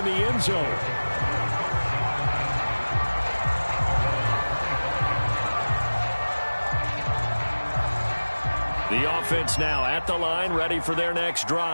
the end zone. The offense now at the line, ready for their next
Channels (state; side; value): inverted; both; correlation -1.00